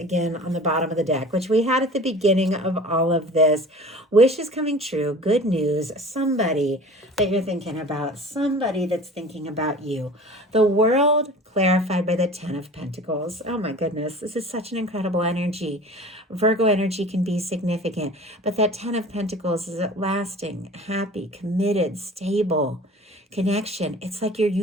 on the bottom of the deck, which we had at the beginning of all of this. Wish is coming true. Good news. Somebody that you're thinking about. Somebody that's thinking about you. The world clarified by the Ten of Pentacles. Oh my goodness. This is such an incredible energy. Virgo energy can be significant, but that Ten of Pentacles is lasting, happy, committed, stable connection. It's like your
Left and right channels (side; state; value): both; normal; correlation 0.42